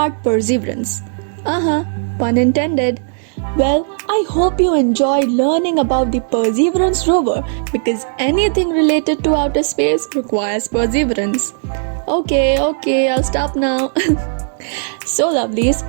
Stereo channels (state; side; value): silent; left; digital silence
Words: perseverance. Pun intended. Well, I hope you enjoyed learning about the Perseverance rover because anything related to outer space requires perseverance. Okay, I'll stop now. So lovelies,